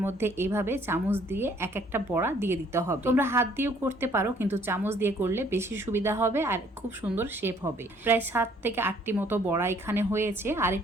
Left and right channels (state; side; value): normal; both; correlation 0.61